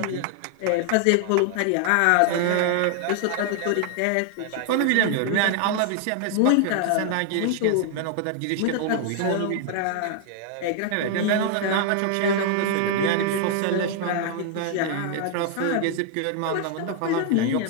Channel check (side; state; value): both; different; correlation 0.00